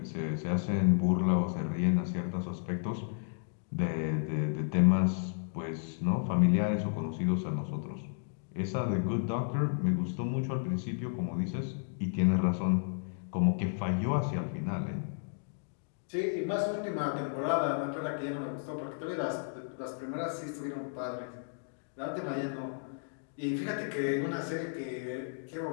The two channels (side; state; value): right; silent; digital silence